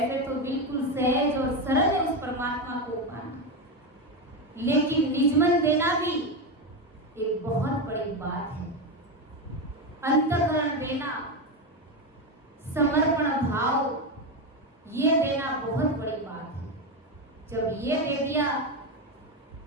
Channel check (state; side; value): normal; both; correlation 0.13